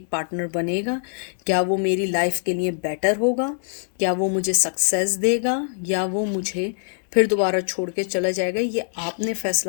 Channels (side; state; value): right; silent; digital silence